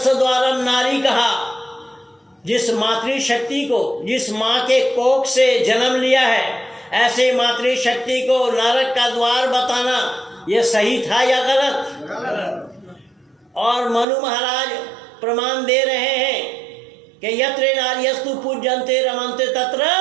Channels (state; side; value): drops out; left; at 14.1 s